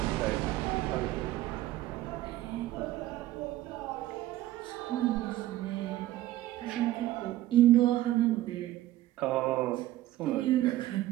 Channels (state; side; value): quieter; left; 15.1 dB